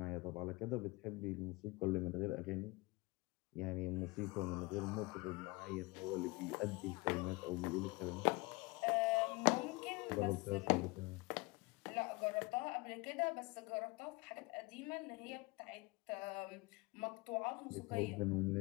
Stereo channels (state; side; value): quieter; right; 24.4 dB